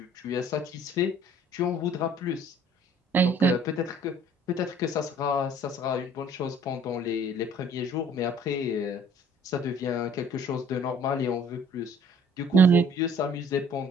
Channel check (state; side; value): normal; both; correlation 0.55